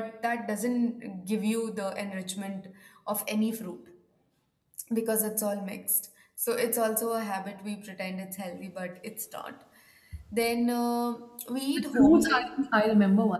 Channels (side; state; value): both; identical; correlation 1.00